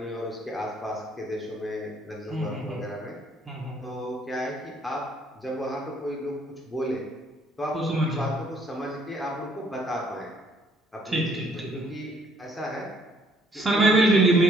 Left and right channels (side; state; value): both; normal; correlation 0.65